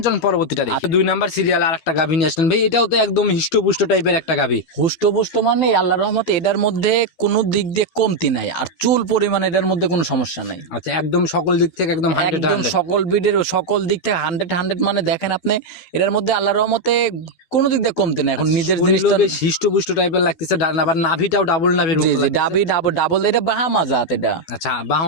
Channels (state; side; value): late; right; 12 ms